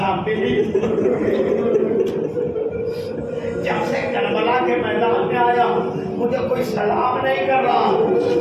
بھی نہیں۔ جب سے کربلا کے میدان میں آیا مجھے کوئی سلام نہیں کر رہا۔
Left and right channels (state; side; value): identical; both; correlation 1.00